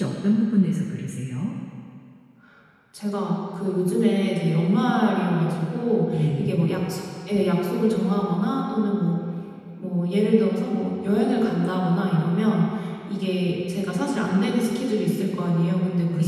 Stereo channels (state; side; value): identical; both; correlation 1.00